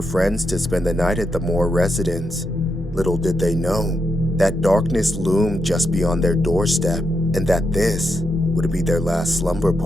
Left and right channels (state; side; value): normal; both; correlation 0.83